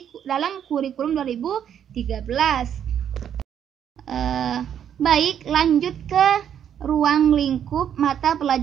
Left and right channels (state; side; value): quieter; left; 9.2 dB